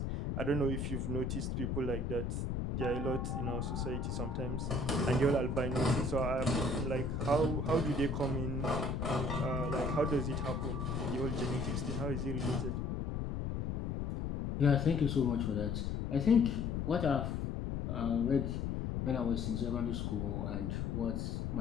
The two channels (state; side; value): noise; left; rumble, 1 dB below the sound